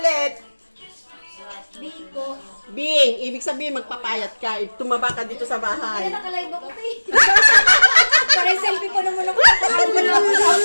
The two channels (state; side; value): inverted; both; correlation -1.00